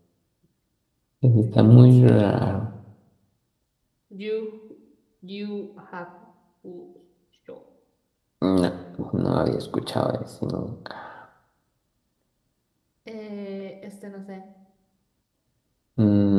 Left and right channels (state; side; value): identical; both; correlation 1.00